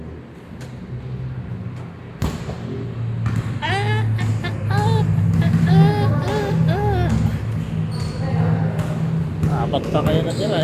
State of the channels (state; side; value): identical; both; correlation 1.00